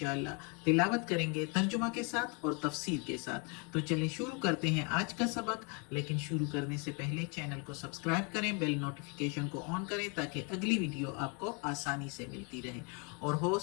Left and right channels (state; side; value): quieter; right; 34.0 dB